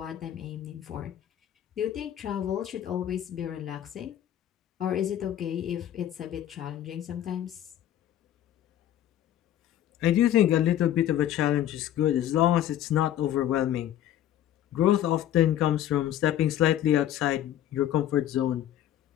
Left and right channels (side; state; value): right; quieter; 11.7 dB